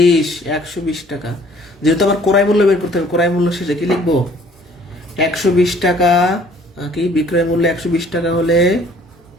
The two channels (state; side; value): normal; both; correlation 0.56